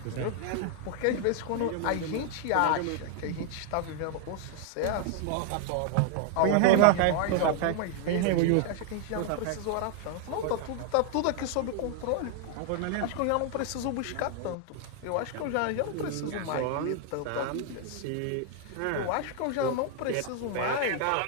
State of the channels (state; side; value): different; both; correlation 0.00